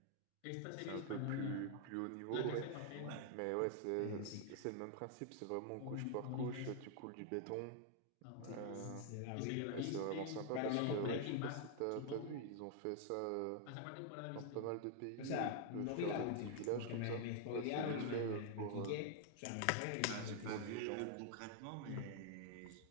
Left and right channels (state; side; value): different; both; correlation 0.00